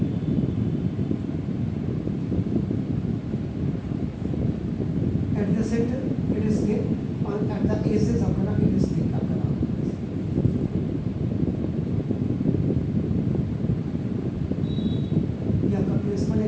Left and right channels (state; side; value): identical; both; correlation 1.00